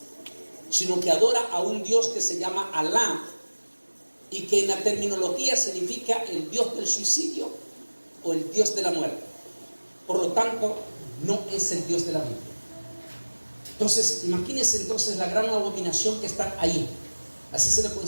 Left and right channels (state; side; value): inverted; both; correlation -1.00